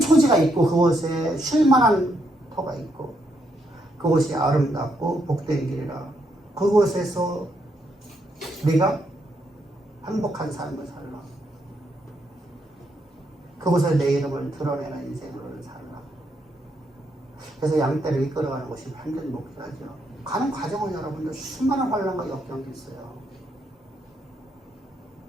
있고 그곳에 쉴만한 터가 있고 그곳이 아름답고 복된 길이라 그곳에서 우리가 행복한 삶을 살라. 그곳에 내 이름을 드러내는 인생으로 살라. 그래서 양떼를 이끌어가는 것이 완전 목표죠. 가는 과정은 여러분들 수많은 환란과 역경이 있어요.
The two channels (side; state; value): both; normal; correlation 0.77